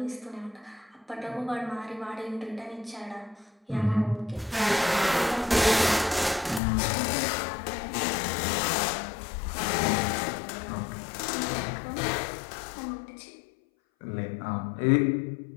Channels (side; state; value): right; drops out; at 6.6 s